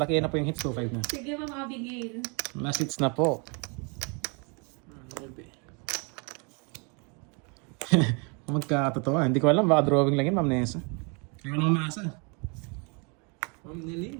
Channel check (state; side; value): quieter; left; 33.7 dB